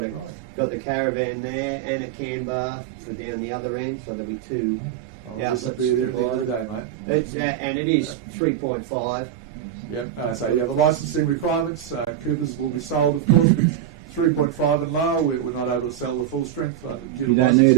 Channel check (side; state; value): left; quieter; 10.7 dB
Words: got the caravan there and a can bar for down the other end, so there'll be two outlets. This will be there at the end of the day, mate. It's and it is 3.5. Yep. The licensing requirements. Coopers will be sold, of course, with 3.5 and lower. We're not able to sell the full strength. You don't need